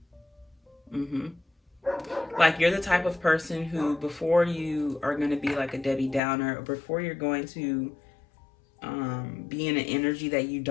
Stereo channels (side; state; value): right; drops out; at 6.2 s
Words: Like, you're the type of person who, before you are going to be like a Debbie Downer, or before you're going to be in an energy that you